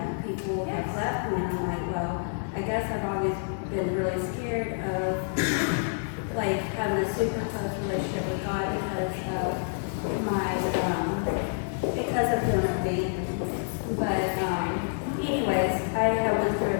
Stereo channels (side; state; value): right; silent; digital silence